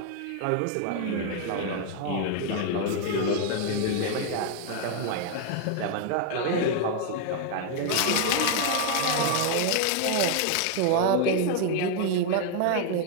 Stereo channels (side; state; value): both; different; correlation 0.01